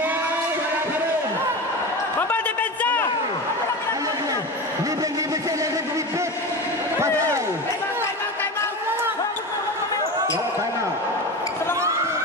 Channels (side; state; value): both; normal; correlation 0.25